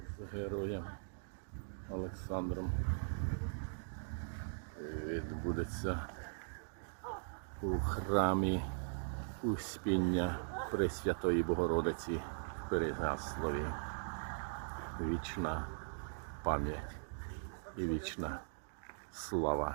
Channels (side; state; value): left; silent; digital silence